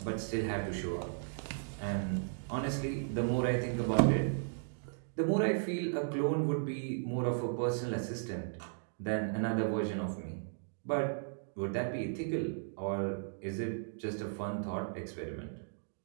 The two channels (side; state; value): left; silent; digital silence